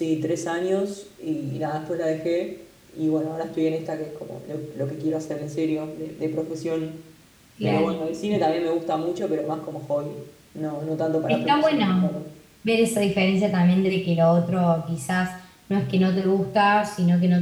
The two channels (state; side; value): identical; both; correlation 1.00